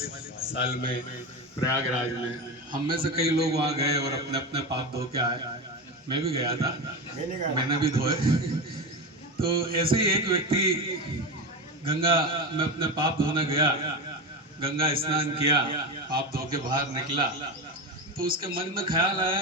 साल में प्रयागराज में। हम में से कई लोग वहाँ गए और अपने अपने पाप धो के आए। मैं भी गया था, मैंने भी धोए। तो ऐसे ही एक व्यक्ति गंगा में अपने पाप धोने गया, गंगा स्नान किया, पाप धो के बाहर निकला, तो उसके मन में ख्याल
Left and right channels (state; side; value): normal; both; correlation 0.20